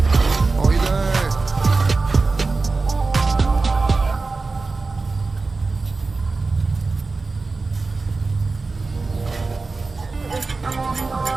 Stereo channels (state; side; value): quieter; left; 3.8 dB